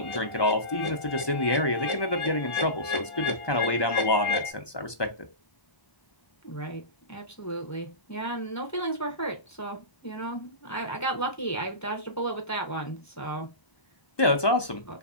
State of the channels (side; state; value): right; late; 1.2 ms